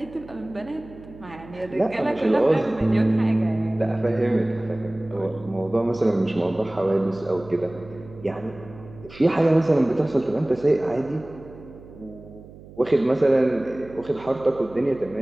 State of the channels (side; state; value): right; noise; hum, 19 dB below the sound